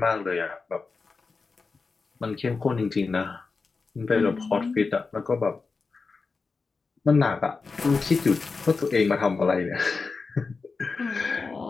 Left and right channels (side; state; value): right; quieter; 4.4 dB